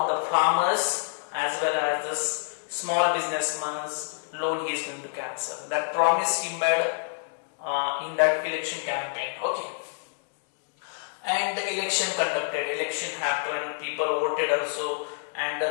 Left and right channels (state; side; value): silent; right; digital silence